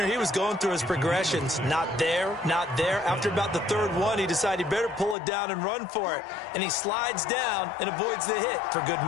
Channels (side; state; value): right; drops out; at 5.2 s